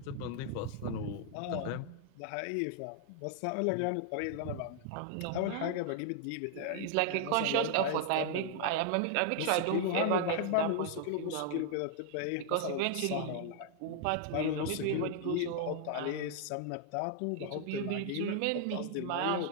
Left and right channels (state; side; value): different; both; correlation 0.00